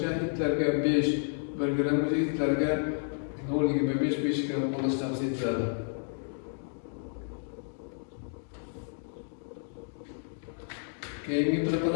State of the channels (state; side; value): silent; right; digital silence